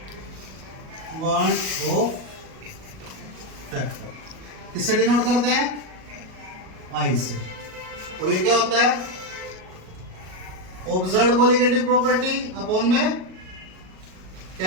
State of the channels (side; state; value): left; late; 38 ms